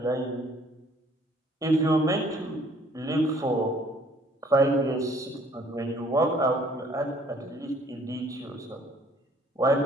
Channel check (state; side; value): normal; both; correlation 0.59